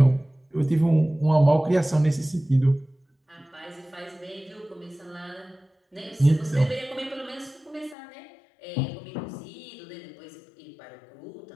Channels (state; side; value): drops out; right; at 8.0 s